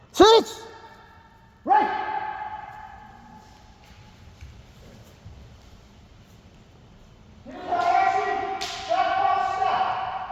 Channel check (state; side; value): identical; both; correlation 1.00